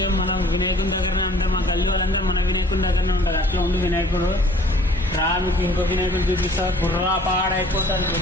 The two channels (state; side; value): normal; both; correlation 0.54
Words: మనం వినాయకుని దగ్గరనే ఉంటాం. మా గల్లీ వాళ్ళందరూ మన వినాయకుని దగ్గరనే ఉంటారు. అట్లా ఉండి వినాయకుడు మీకు ఇంకో వినాయకుడు చూపిస్తా. గుర్రా పాడైపోతాడు